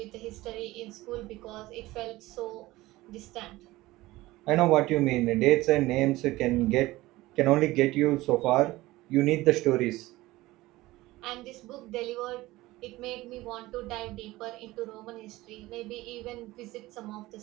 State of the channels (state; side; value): quieter; left; 18.5 dB